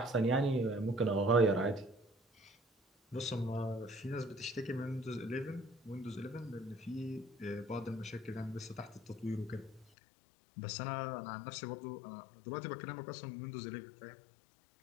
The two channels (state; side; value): drops out; right; at 9.9 s